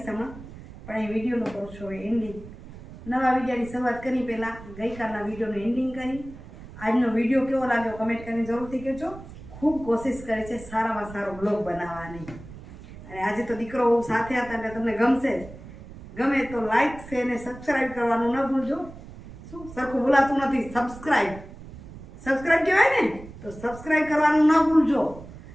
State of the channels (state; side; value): noise; right; rumble, 16 dB below the sound